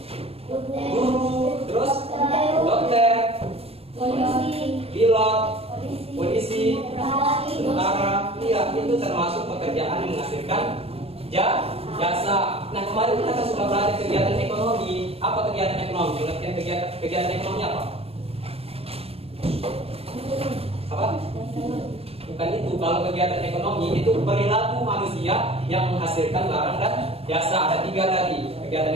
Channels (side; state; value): left; late; 0.28 ms